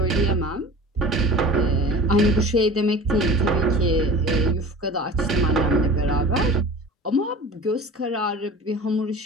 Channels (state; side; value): normal; both; correlation 0.38